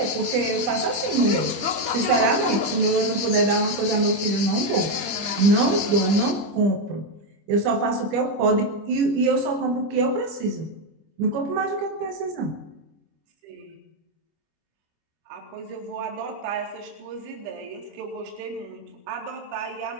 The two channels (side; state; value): left; late; 25 ms